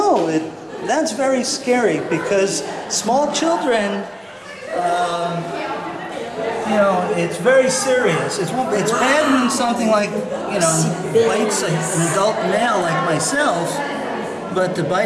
That's very scary because small children, it's very serious. It's bad when something like, bites an adult male like myself, but to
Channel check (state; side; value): identical; both; correlation 1.00